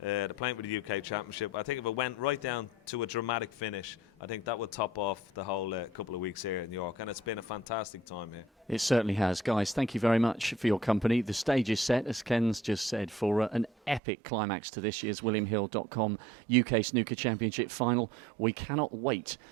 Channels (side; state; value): left; drops out; at 14.0 s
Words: They're playing for the UK Championship. I think if it went right down to a dramatic finish, I think that would top off the whole couple of weeks here in New York. And it's been a fantastic time here. It certainly has. Guys, thank you very much for your company. The stage is set, as Ken's just said, for an epic climax to this year's WilliamHill.com UK Snooker Championship final. We cannot wait